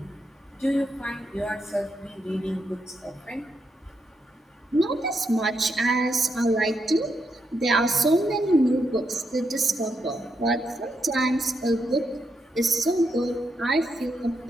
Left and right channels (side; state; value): both; normal; correlation 0.81